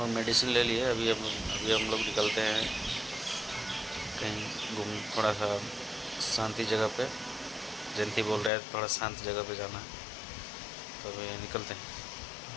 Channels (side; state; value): right; drops out; at 8.5 s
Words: मेडिसिन ले लिए। अभी हम लोग निकलते हैं कहीं घूम, थोड़ा सा शांति जगह पे। जयंती बोल रहा है थोड़ा शांत जगह पे जाना है, तो अभी निकलते हैं।